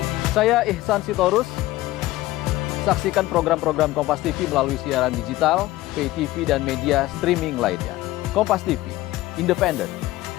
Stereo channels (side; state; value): right; quieter; 17.1 dB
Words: Saya Ihsan Sitorus. Saksikan program-program Kompas TV melalui siaran digital, pay TV, dan media streaming lainnya. Kompas TV, independen,